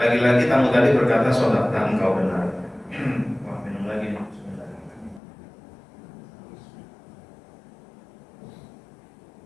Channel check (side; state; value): right; drops out; at 5.2 s